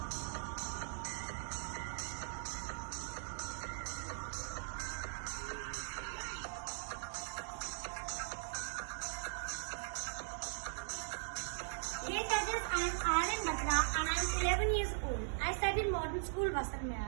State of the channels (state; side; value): silent; left; digital silence